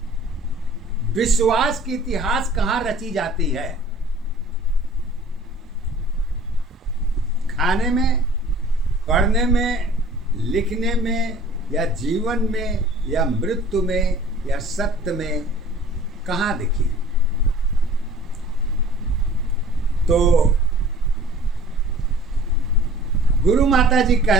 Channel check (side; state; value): both; normal; correlation 0.49